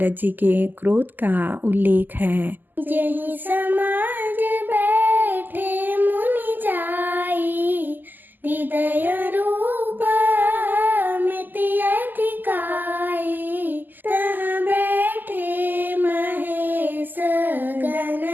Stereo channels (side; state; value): left; late; 0.088 ms